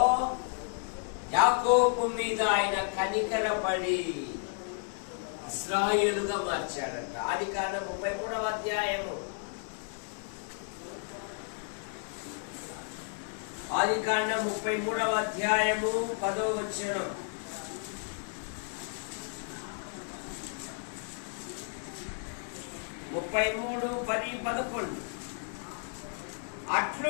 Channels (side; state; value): right; silent; 56 dB below the other